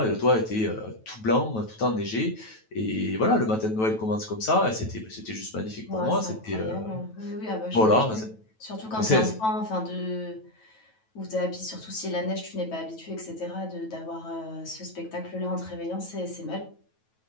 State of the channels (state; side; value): late; right; 9.2 ms